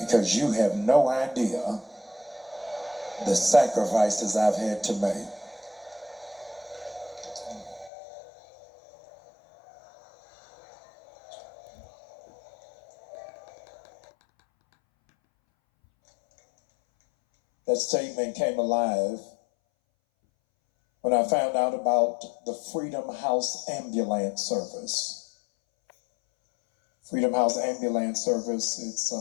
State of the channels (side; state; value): right; drops out; at 7.9 s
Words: you have no idea the sacrifices I've had to make. That statement came alive when I found out about the Freedom House Ambulance Service. Freedom House Ambulance Service,